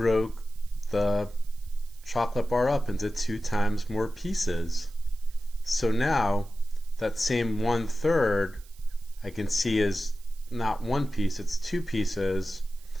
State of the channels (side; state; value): right; noise; hiss, 25 dB below the sound